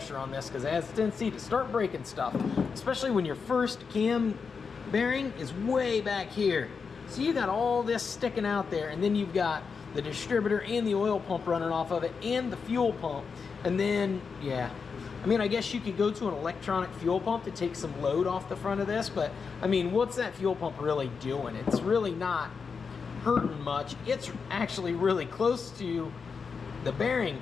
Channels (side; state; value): right; quieter; 5.5 dB